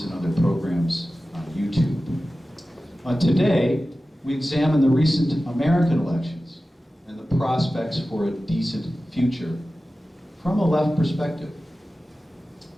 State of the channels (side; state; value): both; normal; correlation 0.95